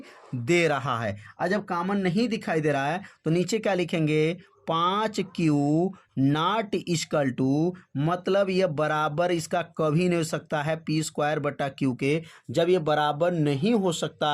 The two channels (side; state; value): both; identical; correlation 1.00